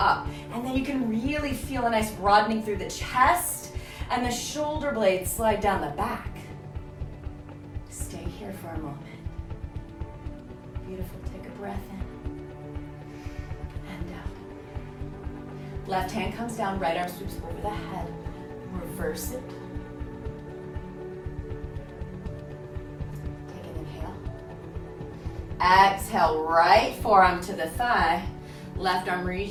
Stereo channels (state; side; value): identical; both; correlation 1.00